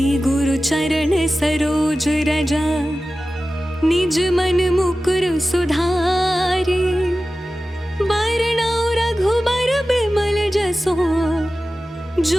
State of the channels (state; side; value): normal; both; correlation 0.95